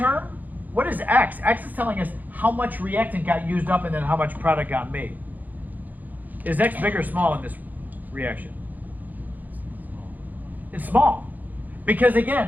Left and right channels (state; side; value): late; left; 0.083 ms